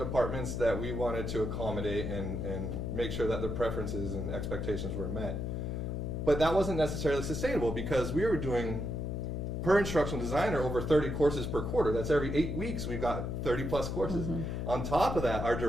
that we wanted to accommodate and make sure that their preferences and expectations were met. But that wasn't necessarily sustainable, because we were doing, per instructional designer, over 30 courses per quarter. That's every 8 weeks we've got 30 plus courses. On top of that, our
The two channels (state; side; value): noise; left; hum, 2 dB below the sound